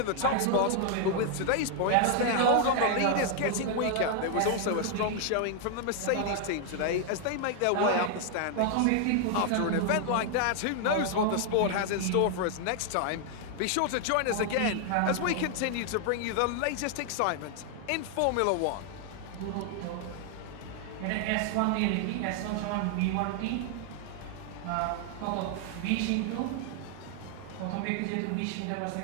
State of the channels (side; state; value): both; different; correlation 0.00